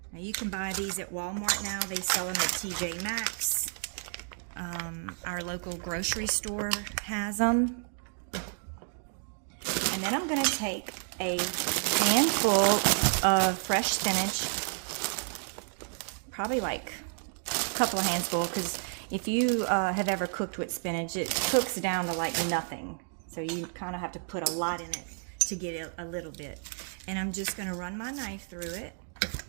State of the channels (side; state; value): left; silent; 57 dB below the other